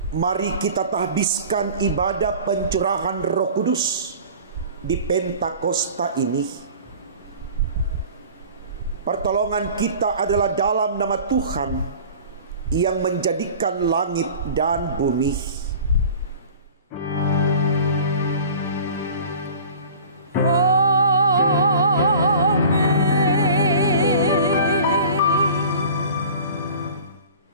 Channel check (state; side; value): inverted; both; correlation -0.42